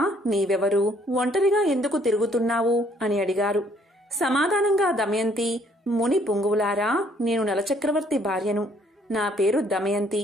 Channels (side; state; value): both; normal; correlation 0.64